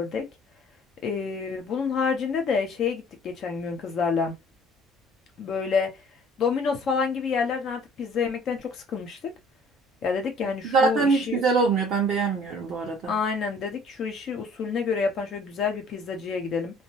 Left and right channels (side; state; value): both; normal; correlation 0.54